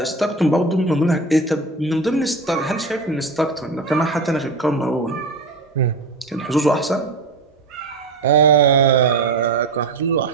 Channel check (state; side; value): quieter; left; 3.4 dB